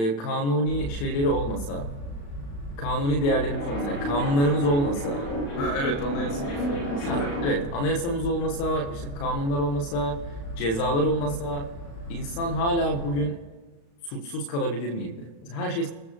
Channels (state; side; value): late; right; 35 ms